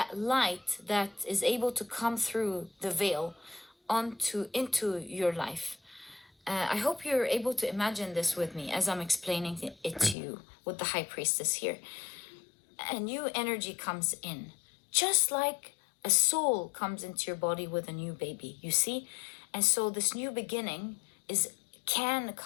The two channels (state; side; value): drops out; right; at 10.2 s